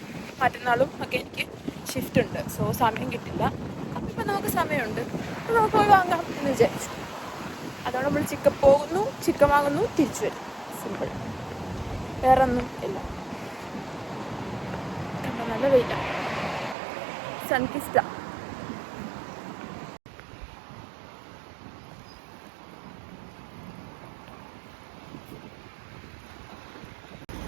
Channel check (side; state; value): left; drops out; at 16.8 s